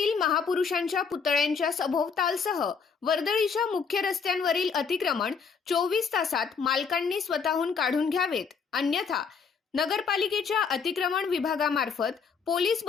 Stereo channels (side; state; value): right; quieter; 5.7 dB